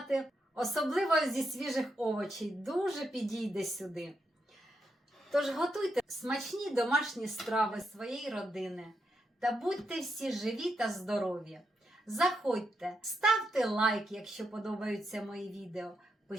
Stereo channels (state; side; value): normal; both; correlation 0.82